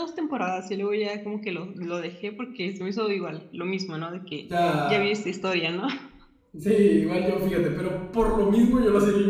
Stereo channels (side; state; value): both; identical; correlation 1.00